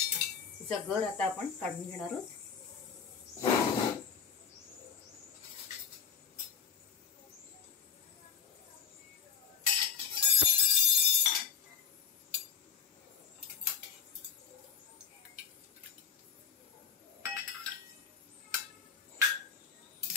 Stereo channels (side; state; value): right; quieter; 7.1 dB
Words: तिचा गर आता आपण काढून घेणार आहोत।